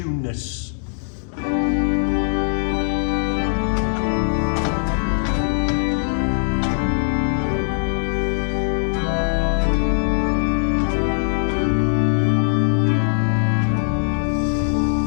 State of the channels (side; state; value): right; silent; digital silence